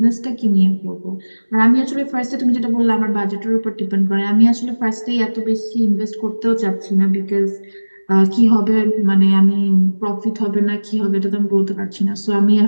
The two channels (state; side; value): inverted; both; correlation -1.00